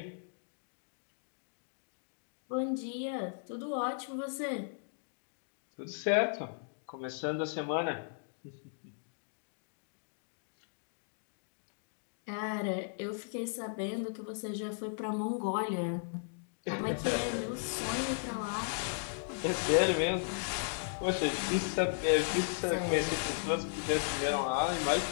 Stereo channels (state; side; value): silent; right; digital silence